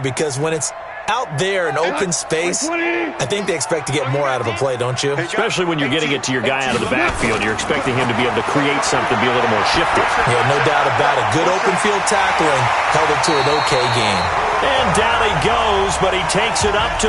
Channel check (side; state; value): both; identical; correlation 1.00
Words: when it's out there in open space, I think they expect to get more out of a play, don't you? Especially when you're getting it to your guy out of the backfield. You're expecting him to be able to create something, be a little more shifty. Yeah, no doubt about it. Good open field tackling held it to an okay game. And down he goes, but he takes it up to